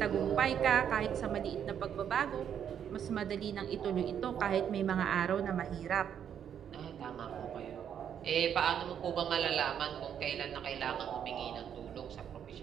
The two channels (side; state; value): left; quieter; 8.8 dB